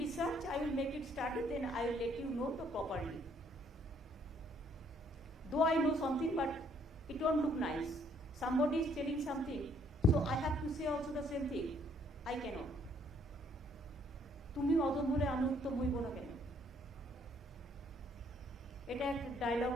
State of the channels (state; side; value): normal; both; correlation 0.66